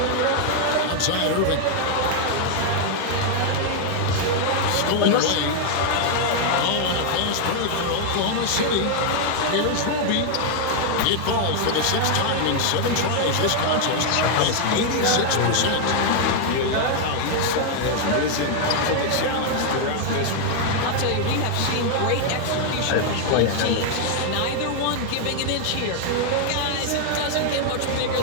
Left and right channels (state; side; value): different; both; correlation 0.00